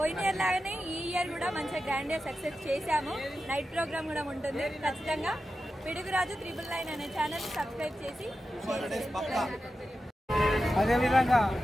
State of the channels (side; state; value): both; normal; correlation 0.91